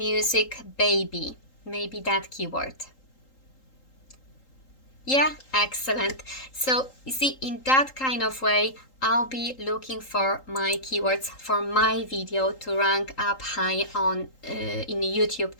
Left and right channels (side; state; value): right; late; 3.8 ms